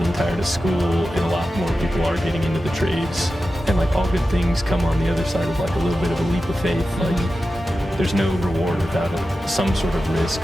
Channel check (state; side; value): normal; both; correlation 0.92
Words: tired of school and a lot more people are getting into the trades, and like all good things come on the other side of like a little bit of a leap of faith. Like there's no reward without some sort of risk,